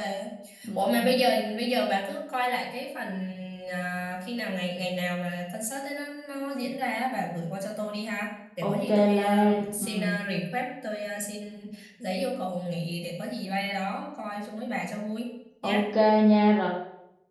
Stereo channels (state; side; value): identical; both; correlation 1.00